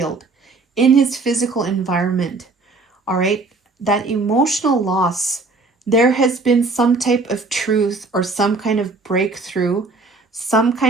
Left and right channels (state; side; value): quieter; left; 3.6 dB